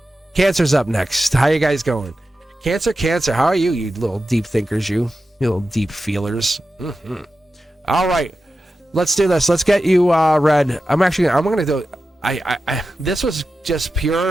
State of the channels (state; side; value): normal; both; correlation 0.92